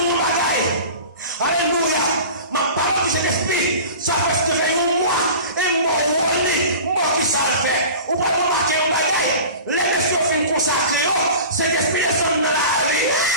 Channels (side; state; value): both; inverted; correlation -0.38